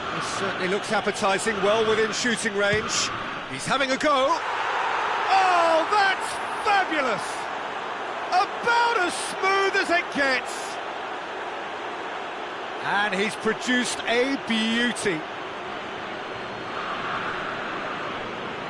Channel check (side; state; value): both; identical; correlation 1.00